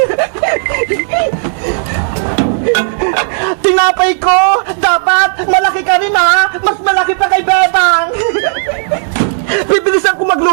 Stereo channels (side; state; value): left; silent; 71 dB below the other